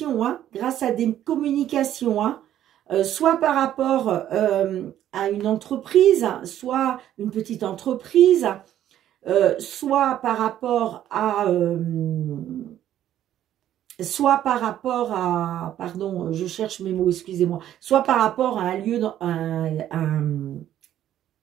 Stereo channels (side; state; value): left; quieter; 11.6 dB